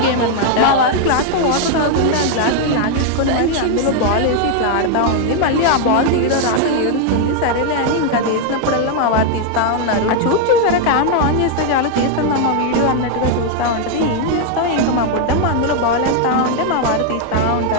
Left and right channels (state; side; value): different; both; correlation 0.00